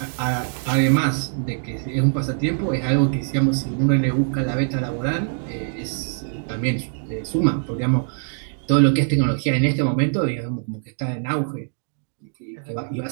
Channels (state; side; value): silent; left; digital silence